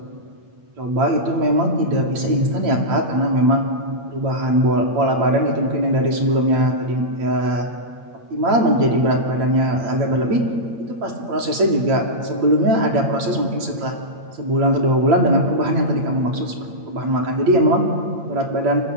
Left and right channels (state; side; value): late; left; 8.7 ms